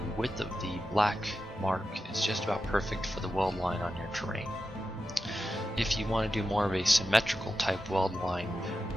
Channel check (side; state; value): both; normal; correlation 0.91